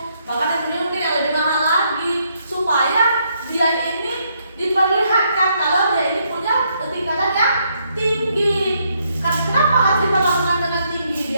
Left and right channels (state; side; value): inverted; both; correlation -0.74